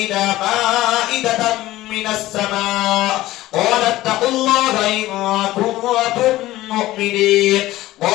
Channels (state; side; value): quieter; right; 16.4 dB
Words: مائدة من السماء قال اتقوا الله إن كنتم مؤمنين